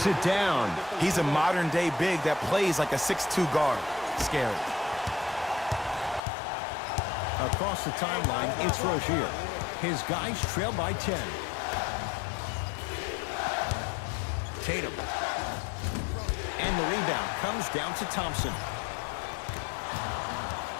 it down. He's a modern-day big that plays like a 6'2 guard. Scary. Across the timeline, it's Rozier. His guys trail by 10. Tatum. And the rebound comes down to Thompson.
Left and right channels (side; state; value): right; drops out; at 6.2 s